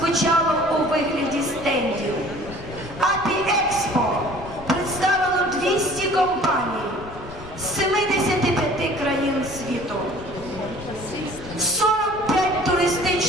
у вигляді стендів. Апі-Експо представило 200 компаній з 75 країн світу. 45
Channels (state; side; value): noise; left; rumble, 17 dB below the sound